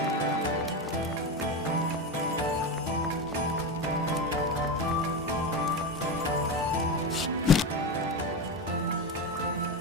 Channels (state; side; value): normal; both; correlation 0.18